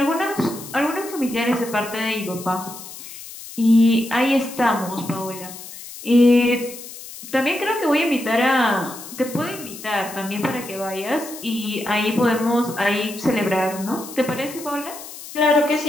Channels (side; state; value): left; noise; hiss, 14 dB below the sound